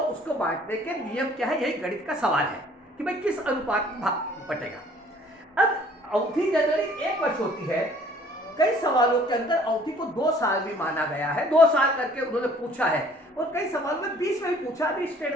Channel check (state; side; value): normal; both; correlation 0.56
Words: उसको बांटने के नियम क्या है, यही गणित का सवाल है कि भाई किस अनुपात में बटेगा। अब अवधि जनरली 1 वर्ष होती है। कई सवालों के अंदर अवधि को 2 साल भी माना गया है, 2 साल करके उन्होंने पूछा है और कई सवालों में 20 में भी पूछा। अभी